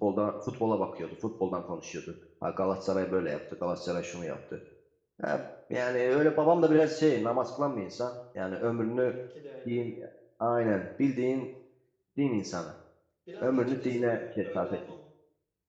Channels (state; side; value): identical; both; correlation 1.00